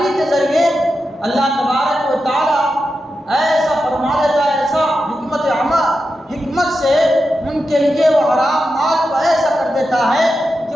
کے ذریعے، اللہ تبارک و تعالیٰ ایسا فرما دیتا ہے، ایسا حکمت سے ان کے لیے وہ حرام مال کو ایسا کر دیتا ہے کہ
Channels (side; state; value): both; normal; correlation 0.89